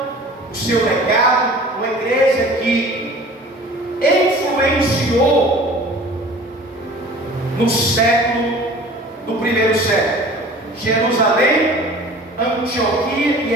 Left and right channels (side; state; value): both; normal; correlation 0.44